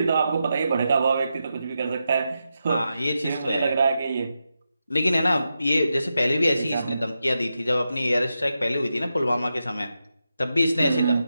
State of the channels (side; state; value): both; inverted; correlation -0.88